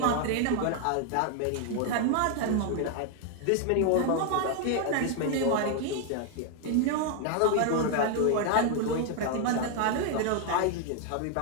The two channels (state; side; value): different; both; correlation 0.00